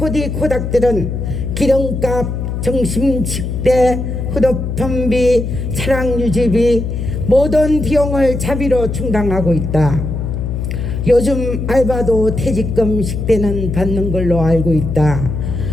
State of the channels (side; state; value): left; noise; hum, 3 dB below the sound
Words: 기름값, 점심 식대, 휴대폰비, 차량 유지비 모든 비용을 자비로 충당하고 있다. 요즘 알바도 퇴직금 식대는 받는 걸로 알고 있다.